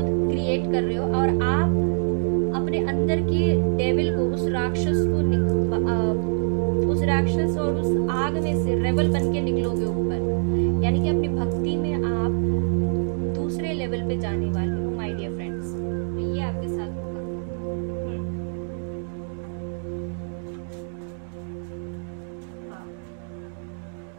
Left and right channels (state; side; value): silent; left; 62 dB below the other